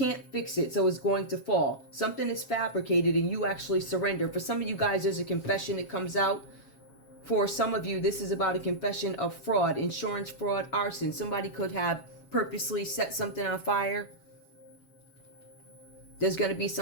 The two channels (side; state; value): right; late; 7.4 ms